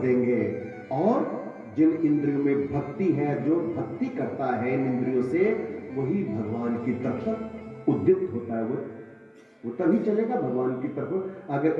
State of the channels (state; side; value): identical; both; correlation 1.00